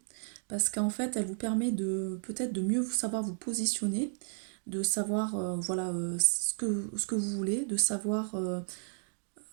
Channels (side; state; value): left; silent; 56 dB below the other